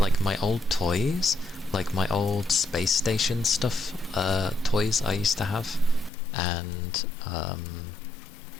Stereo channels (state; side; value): drops out; right; at 6.1 s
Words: my old toys, like my old space station stuff, toys I used to have, and,